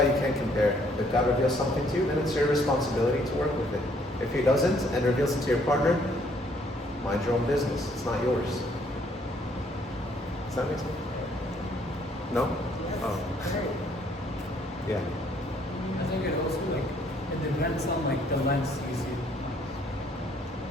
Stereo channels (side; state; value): both; normal; correlation 0.65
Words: you can't compare. If God reveals something to you, then it's your responsibility to work with it. If He doesn't and reveals it to your partner, mind your own business. It's not yours. Does that make sense? No? Oh. Yeah. I think it also it depends on the lens you see.